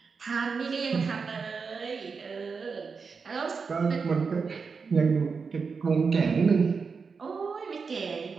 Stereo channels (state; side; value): quieter; left; 5.2 dB